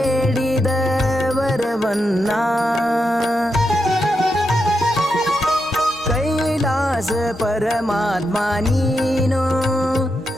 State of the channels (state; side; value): normal; both; correlation 0.85